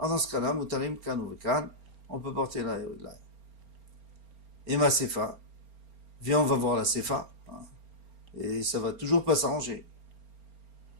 ce cas-là, Mutarim kan ou vekan, on peut porter là et là. Et ma Sefa, viens on va voir la Sefa, hein, et ça va toujours pas s'arranger.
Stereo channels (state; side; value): late; left; 4.3 ms